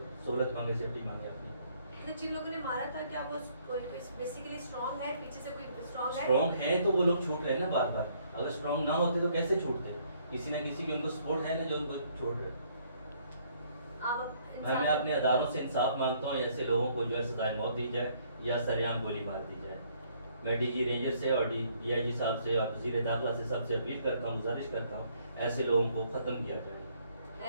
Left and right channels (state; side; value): inverted; both; correlation -0.65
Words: मांगे, सेफ्टी मांगे अपनी? जिन लोगों ने मारा था क्या वो कोई बेसिकली स्ट्रांग है, पीछे से कोई स्ट्रांग है? स्ट्रॉन्ग है तो वो लोग छूट रहे हैं ना बार बार। अगर स्ट्रॉन्ग ना होते तो कैसे छूटते? किसी ना किसी की उनको सपोर्ट है ना जो उनको छोड़ रहे। मैं अपने अदारों से इंसाफ मांगता हूँ, ऐसे लोगों को जो है सजाए मौत दी जाए या सरेआम गोली मार दी जाए। मैं DG रेंजर से और DIG साहब से और वज़ीर दाखिला से सबसे अपील करता हूँ, गुजारिश करता हूँ, ऐसे लोगों को ख़त्म किया